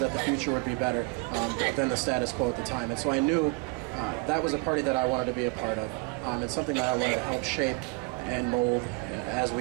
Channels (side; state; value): left; quieter; 28.8 dB